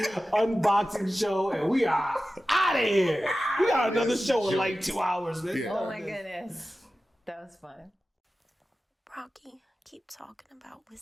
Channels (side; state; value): both; normal; correlation 0.94